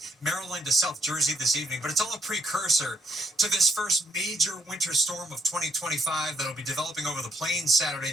Maryland to South Jersey this evening, but it's all a precursor to this first major winter storm of 2025 that'll be developing over the plains Saturday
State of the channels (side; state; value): both; normal; correlation 0.72